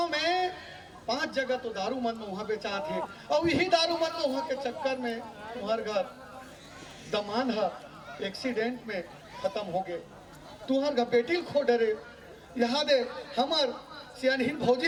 में 5 जगह तो दारू मन में वहाँ बेचा थे, और यही दारू मन में वहाँ के चक्कर में तुम्हार घर दमान है एक्सीडेंट में खत्म हो गए। तुम्हार घर बेटी खो डरे। यहाँ दे हमार सियानहीन भौजी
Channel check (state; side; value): identical; both; correlation 1.00